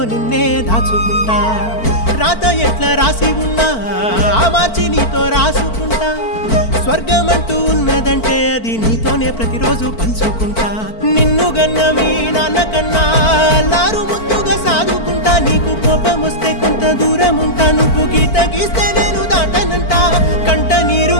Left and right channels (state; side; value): late; right; 4.5 ms